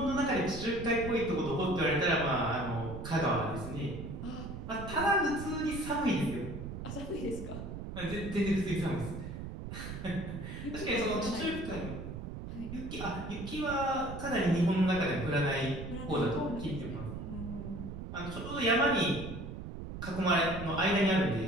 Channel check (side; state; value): right; noise; rumble, 8 dB below the sound